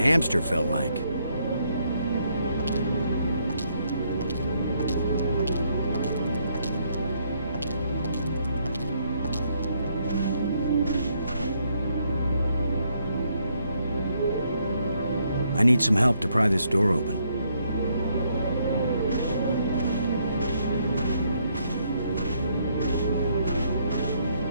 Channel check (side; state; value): both; inverted; correlation -0.73